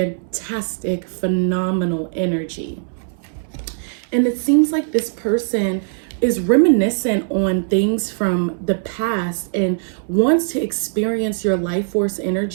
phenomenal energy. And it seems like this person is reminiscent on things from the past and wants to experience your life force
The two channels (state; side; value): silent; left; 66 dB below the other